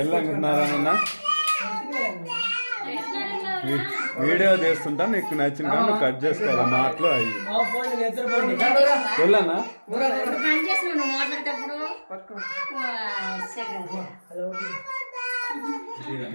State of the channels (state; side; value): inverted; both; correlation -1.00